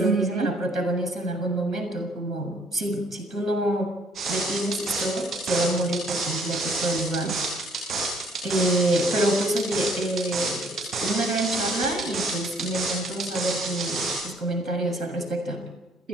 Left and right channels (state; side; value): normal; both; correlation 0.62